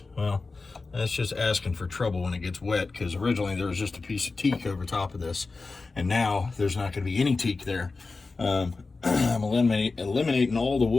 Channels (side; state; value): right; quieter; 3.9 dB